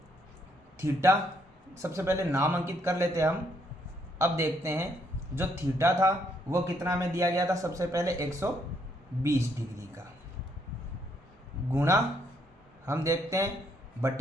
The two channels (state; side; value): normal; both; correlation 0.72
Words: पहले नाम अंकित कर लेते हैं हम। अब देखते हैं जो थीटा था वो कितना में दिया गया था, सबसे पहले 120 डिग्री का, गुणा हम देखते हैं